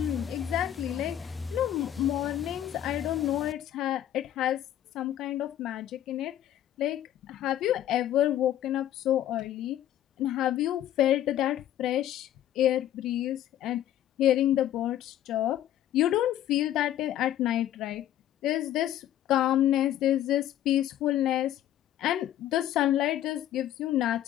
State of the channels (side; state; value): right; quieter; 12.0 dB